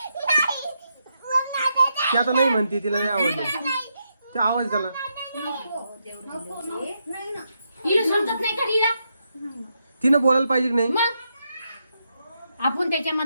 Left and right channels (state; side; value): inverted; both; correlation -0.82